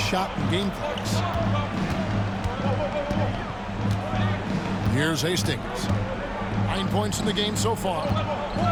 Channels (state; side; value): identical; both; correlation 1.00